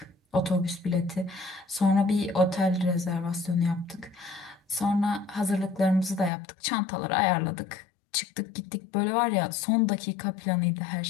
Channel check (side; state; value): right; drops out; at 6.3 s